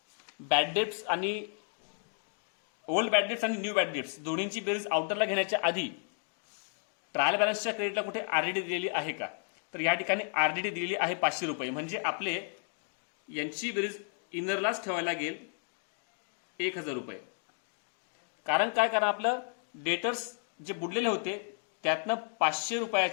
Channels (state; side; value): silent; right; 56 dB below the other